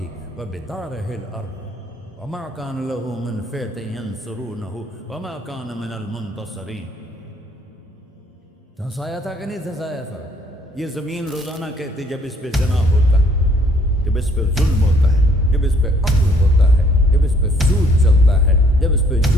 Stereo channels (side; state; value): both; normal; correlation 0.62